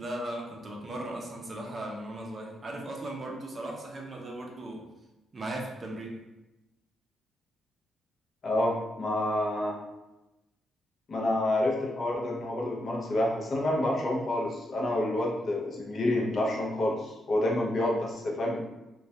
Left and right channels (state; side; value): normal; both; correlation 0.82